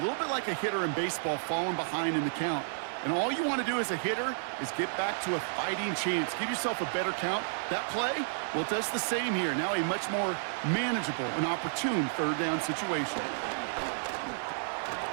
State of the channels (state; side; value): silent; left; 57 dB below the other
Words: little bit like a hitter in baseball falling behind in the count. And all you want to do as a hitter is get back to a fighting chance. Give yourself a better count. That play, well, it does the same here. Now a much more manageable and opportune 3rd down situation.